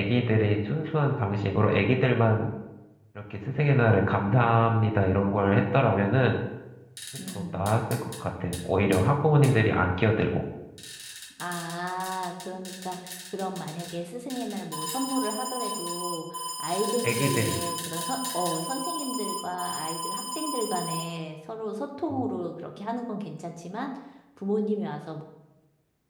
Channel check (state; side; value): identical; both; correlation 1.00